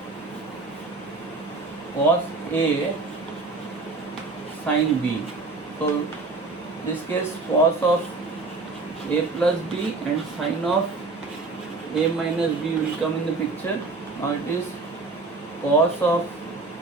cos a sin b. So this case cos of a plus b and sin of A minus B will come in the picture. Now it is cos of,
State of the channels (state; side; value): quieter; left; 3.6 dB